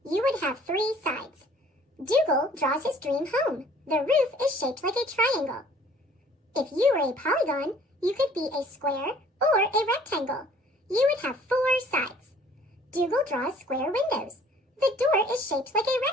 You would have 3 sides. Dougal draws his dream home. The roof is shaped like a triangle. If you were a polygon, you could be a square or a rectangle. You would have 4 sides. Dougal draws square windows. The door is shaped like a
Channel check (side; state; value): both; normal; correlation 0.55